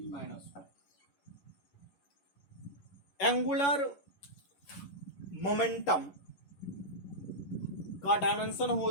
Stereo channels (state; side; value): late; right; 11 ms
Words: एंगुलर मोमेंटम का डायमेंशन हो